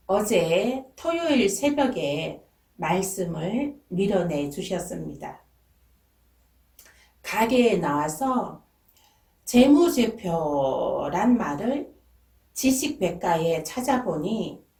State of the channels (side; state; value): both; identical; correlation 1.00